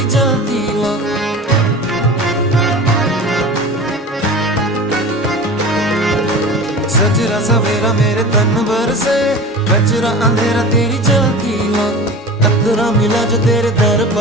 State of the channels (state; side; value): normal; both; correlation 0.35